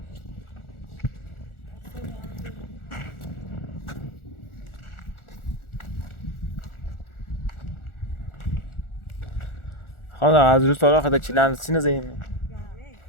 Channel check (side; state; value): right; late; 1.4 ms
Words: خانم از روز سالا خدا چیلند سینه زیم